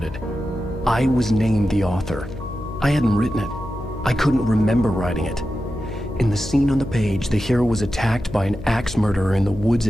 I was named the author. I hadn't written it. I couldn't remember writing it. In the scene on the page, the hero was attacked by an axe murderer in the woods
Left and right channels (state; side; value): noise; left; hum, 12 dB below the sound